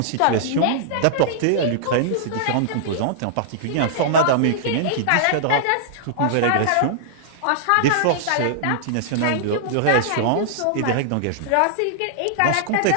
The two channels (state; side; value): different; both; correlation -0.01